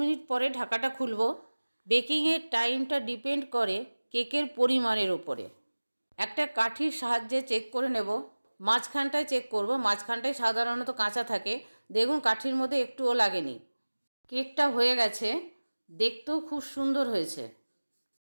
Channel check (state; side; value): inverted; both; correlation -1.00